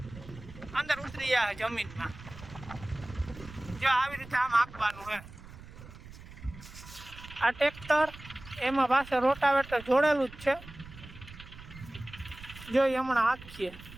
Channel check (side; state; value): right; noise; rumble, 16 dB below the sound